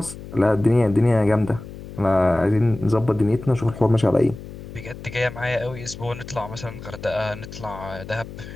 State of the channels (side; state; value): left; noise; hum, 13 dB below the sound